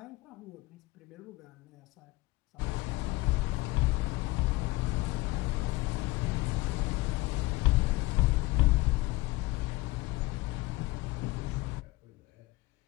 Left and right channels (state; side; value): quieter; right; 20.6 dB